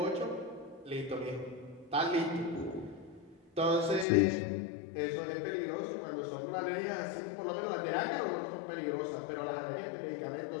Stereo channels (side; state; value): right; drops out; at 4.0 s